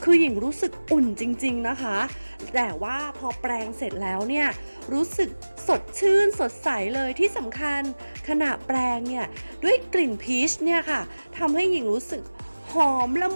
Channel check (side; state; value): both; inverted; correlation -1.00